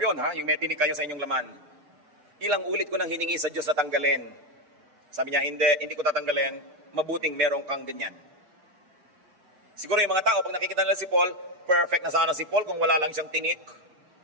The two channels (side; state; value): left; late; 6.7 ms